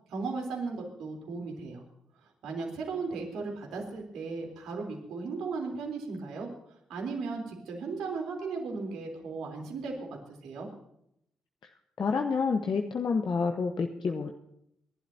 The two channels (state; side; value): normal; both; correlation 0.78